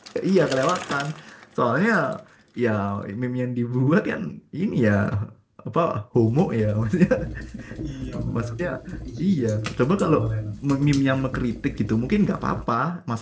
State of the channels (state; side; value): identical; both; correlation 1.00